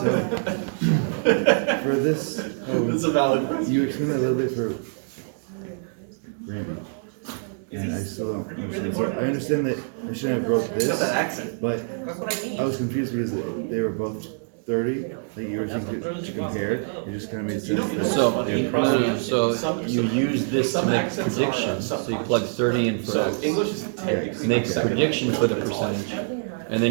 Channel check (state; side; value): silent; left; digital silence